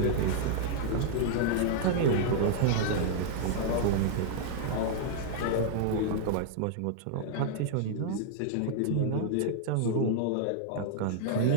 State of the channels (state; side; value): different; both; correlation -0.01